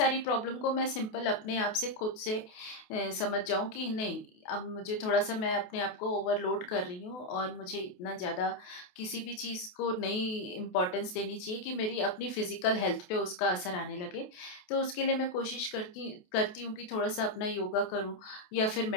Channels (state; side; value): late; right; 28 ms